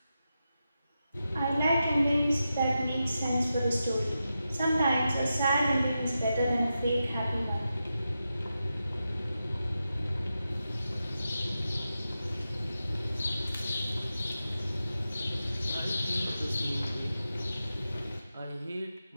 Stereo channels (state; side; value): inverted; both; correlation -0.90